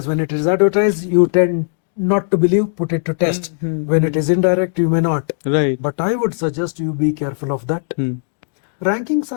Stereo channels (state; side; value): silent; right; digital silence